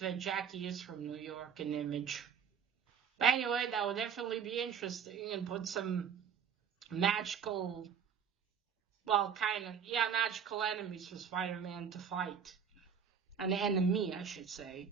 Jackie is from New York in Image. But anyway, that would definitely be interesting and put some magical, well, magical enemies for Spider-Man to fight. An enemy, I should say.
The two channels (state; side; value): quieter; left; 7.3 dB